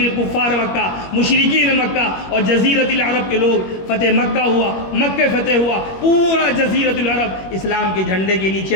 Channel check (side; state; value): right; late; 21 ms